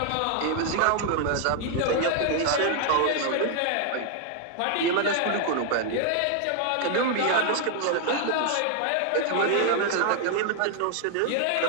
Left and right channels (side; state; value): both; different; correlation 0.00